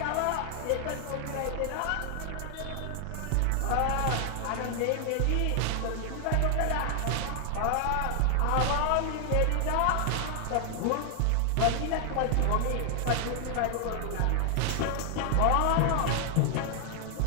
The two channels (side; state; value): both; different; correlation 0.00